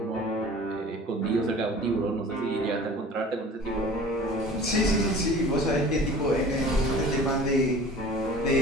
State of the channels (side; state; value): both; normal; correlation 0.43